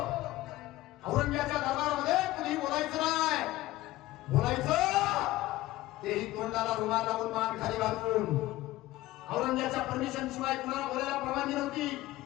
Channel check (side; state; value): right; quieter; 17.1 dB